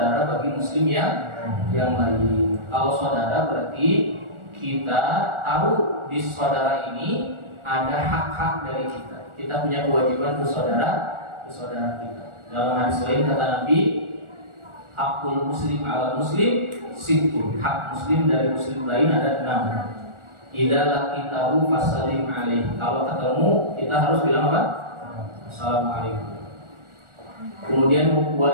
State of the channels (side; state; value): left; late; 1.4 ms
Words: bagi muslim yang lain. Kalau saudara berarti kita tahu di saudara ini ada hak-hak dari kita. Kita punya kewajiban ke saudara kita. Dalam hadis lain kata Nabi, hakul muslim ala muslim sittun. Hak muslim dari muslim lain ada 6. Idza laqitahu fasallim alaih. Kalau ketemu kita harus bilang apa? Assalamualaikum. Kemudian